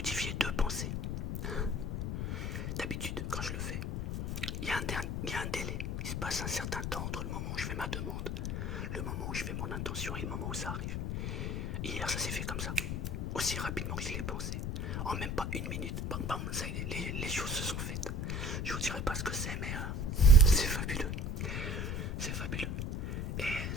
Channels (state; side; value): noise; left; rumble, 1 dB below the sound